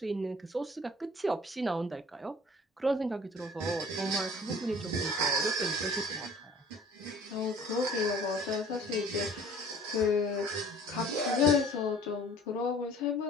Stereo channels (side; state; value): both; normal; correlation 0.50